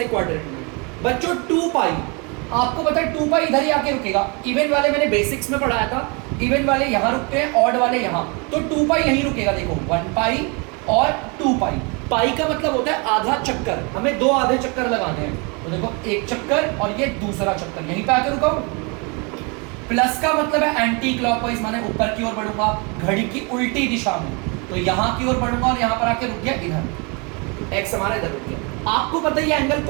क्वाड्रेंट में। बच्चों 2 पाई, आपको पता है 2 पाई इधर ही आके रुकेगा। इवन वाले मैंने बेसिक्स में पढ़ाया था, इवन वाले यहाँ रुकते हैं, ऑड वाले यहाँ, तो 2 पाई यहीं रुकेगा। देखो 1 पाई और 2 पाई। पाई का मतलब होता है आधा चक्कर, हमें 2 आधे चक्कर लगाने हैं। तो देखो एक चक्कर और ये दूसरा चक्कर, यहीं पे आके रुका। प्लस का मतलब है एंटी क्लॉकवाइज, माने ऊपर की ओर बढ़ूंगा, घड़ी की उल्टी दिशा में, तो यहाँ की ओर बढ़ूंगा और यहाँ पर आके रुक गया इधर, एक्स हमारा इधर रुक गया। आपको पता है ये एंगल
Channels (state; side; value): quieter; left; 31.4 dB